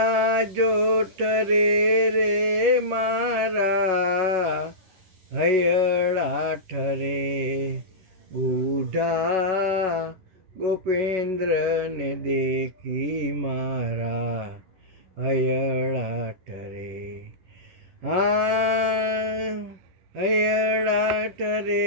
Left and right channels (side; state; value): left; late; 11 ms